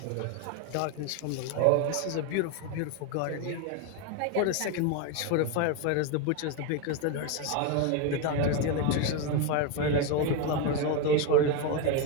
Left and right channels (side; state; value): both; different; correlation 0.02